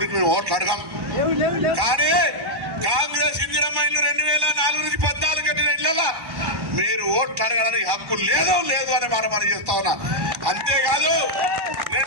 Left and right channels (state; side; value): late; left; 1.1 ms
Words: మేము ఓట్లు అడగాం. కానీ కాంగ్రెస్ ఇందిరమ్మ ఇల్లు 2004 నుంచి 14 కట్టిన ఇళ్ళ మీరు ఓట్లు అడగడానికి హక్కు లేదు అని మనం చేస్తా ఉన్నా. అంతేకాదు